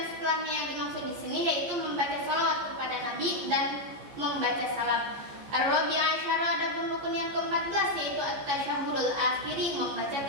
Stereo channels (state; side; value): late; left; 14 ms